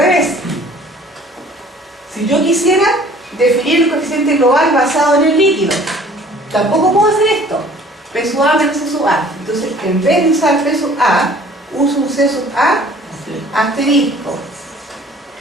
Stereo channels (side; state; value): both; normal; correlation 0.52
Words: si yo quisiera definir el coeficiente global basado en el líquido, tampoco puedo hacer esto. P sub A menos C sub A. Entonces, en vez de usar P sub A, uso un C sub A asterisco,